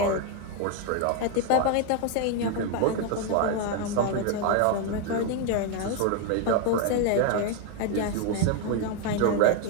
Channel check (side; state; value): both; different; correlation 0.01